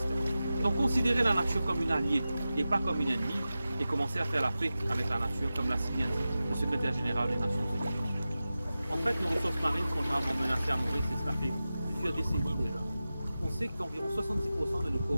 Donc considérer la nature comme une alliée et pas comme une ennemie, et commencer à faire la paix avec la nature, comme l'a si bien dit le secrétaire général des Nations Unies. En fait, nos ressources marines sont gravement menacées à Maurice, et cela fait plusieurs décennies déjà. On sait qu'environ 70% de nos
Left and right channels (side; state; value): both; inverted; correlation -0.94